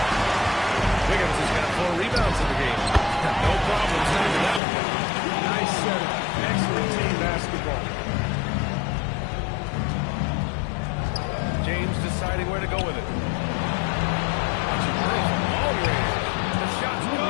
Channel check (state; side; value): drops out; right; at 4.6 s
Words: Wiggins has got 4 rebounds in the game. No problem setting it out. Nice setup. Excellent team basketball. James deciding where to go with it. The shot's